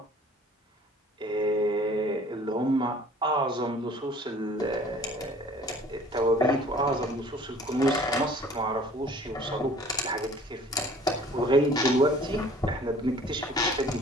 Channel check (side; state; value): both; normal; correlation 0.51